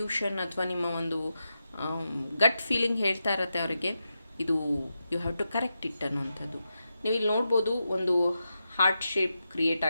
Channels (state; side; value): inverted; both; correlation -0.88